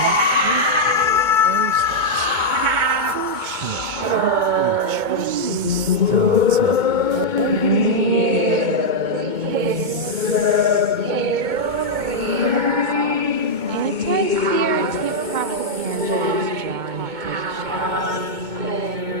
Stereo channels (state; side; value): late; left; 2.2 ms